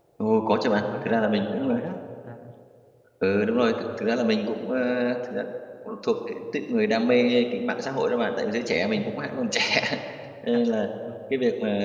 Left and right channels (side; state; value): both; identical; correlation 1.00